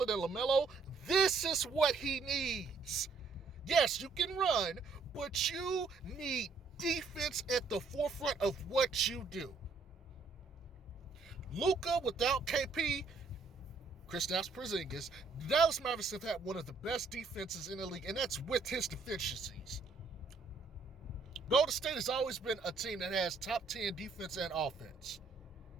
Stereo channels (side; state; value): left; quieter; 4.4 dB